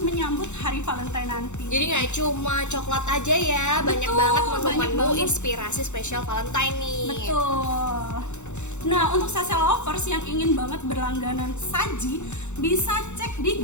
menyambut hari Valentine nanti. Jadi nggak cuma coklat aja ya, banyak banget menu-menu banget. Inspirasi spesial Valentine nih. Betul. Nah, untuk sase lovers yang ingin banget berlangganan saji, bisa cek di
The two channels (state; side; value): late; right; 0.83 ms